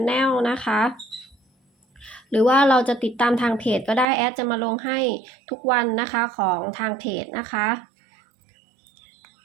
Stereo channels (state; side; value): drops out; left; at 4.0 s